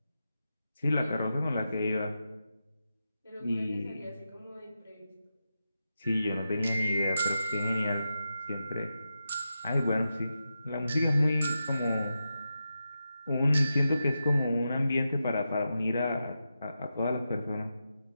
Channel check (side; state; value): both; inverted; correlation -0.89